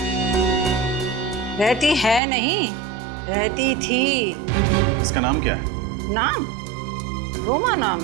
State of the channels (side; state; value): left; drops out; at 2.2 s